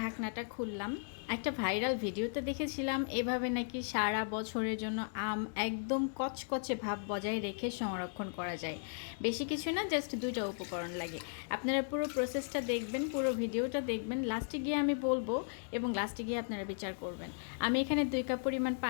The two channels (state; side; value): silent; right; digital silence